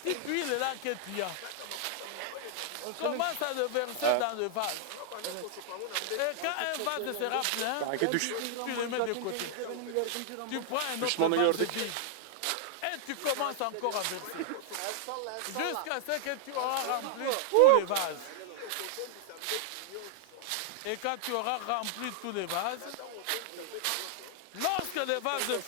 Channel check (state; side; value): different; both; correlation -0.01